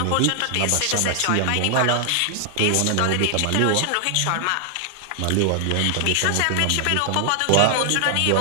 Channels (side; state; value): both; different; correlation 0.00